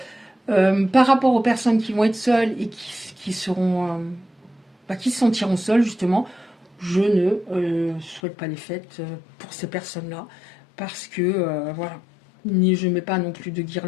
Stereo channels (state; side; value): drops out; right; at 8.2 s